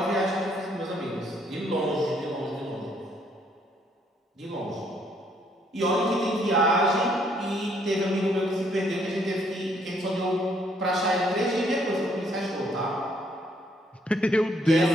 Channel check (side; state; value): both; normal; correlation 0.68